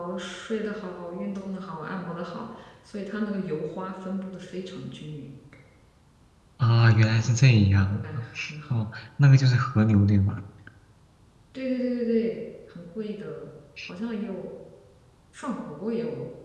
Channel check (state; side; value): identical; both; correlation 1.00